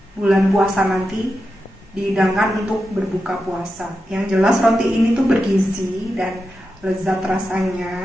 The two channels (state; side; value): normal; both; correlation 0.89